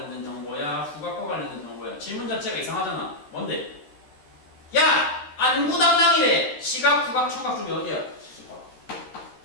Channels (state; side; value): late; right; 13 ms